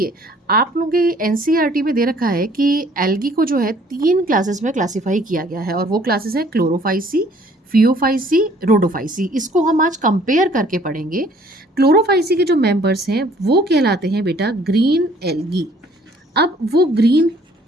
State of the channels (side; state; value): both; normal; correlation 0.58